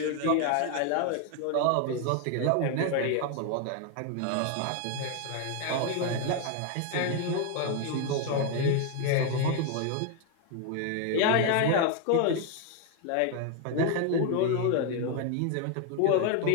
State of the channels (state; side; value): different; both; correlation 0.01